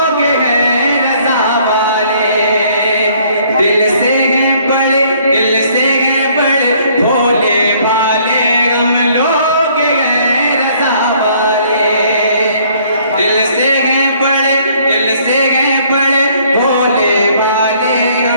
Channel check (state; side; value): inverted; both; correlation -0.62